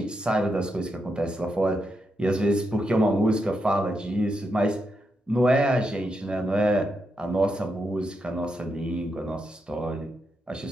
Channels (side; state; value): both; normal; correlation 0.83